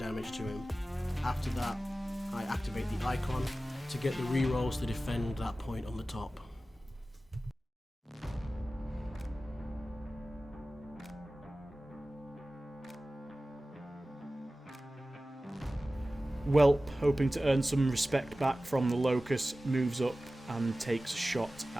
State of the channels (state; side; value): normal; both; correlation 0.96